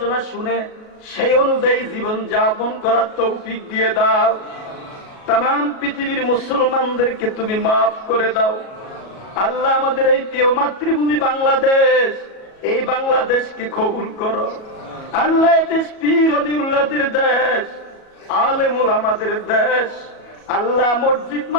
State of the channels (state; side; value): late; right; 37 ms